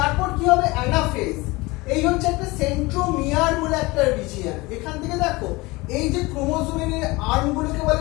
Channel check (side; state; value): right; quieter; 22.8 dB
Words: কি হবে? অ্যানাফেজ। এই হচ্ছে একটা সেন্ট্রোমিয়ার বলে একটা রিজিয়ন। এখান থেকে দেখো এই যে ক্রোমোজোমের আর্মগুলোকে